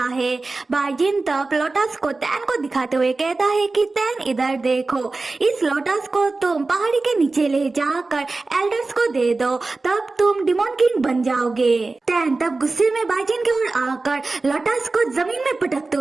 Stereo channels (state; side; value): quieter; left; 3.5 dB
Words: है। बाई जीन तब लोटस को टैन को दिखाते हुए कहता है कि टैन इधर देखो, इस लोटस को तुम पहाड़ी के नीचे ले जाकर एल्डर्स को दे दो, तब तुम डिमोन किंग बन जाओगे। टैन तब गुस्से में बाई जीन की ओर आकर लोटस को जमीन में पटकते